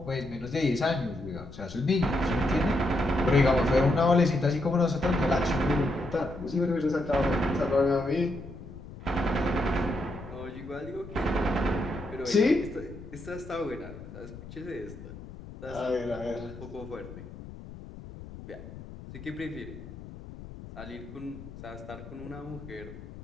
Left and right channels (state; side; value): noise; left; rumble, 14 dB below the sound